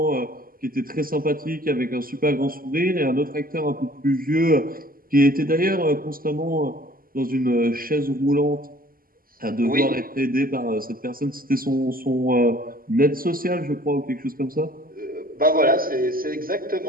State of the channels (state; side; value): late; left; 0.42 ms